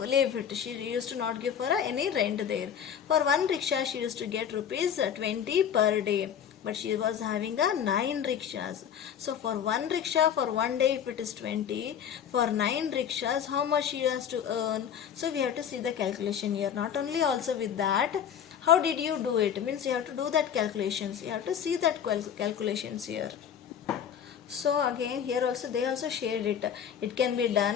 it. She used to not give for any rent there. For one rickshaw she used to get rupees 20 per day. But she was having a 9 rickshaws. So for one rickshaw for one day, if it is 20, for 9 rickshaws, how much she has to earn? So we have to see the calculation here. Not only also with that, how did you do it? Means you have to do that calculations. You have to see that calculations here. So again here also they also shared it. It can be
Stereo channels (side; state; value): right; quieter; 8.6 dB